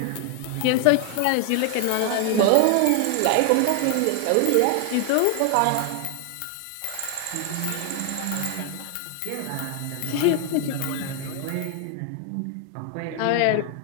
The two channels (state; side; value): different; both; correlation 0.00